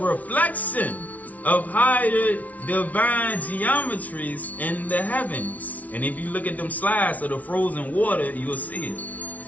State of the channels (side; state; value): right; late; 0.071 ms